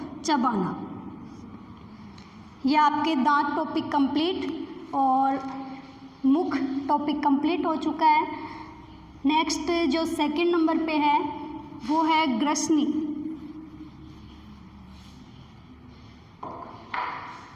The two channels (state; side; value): identical; both; correlation 1.00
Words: चबाना। यह आपके दांत टॉपिक कंप्लीट और मुख टॉपिक कंप्लीट हो चुका है। नेक्स्ट जो 2nd नंबर पे है वो है ग्रसनी।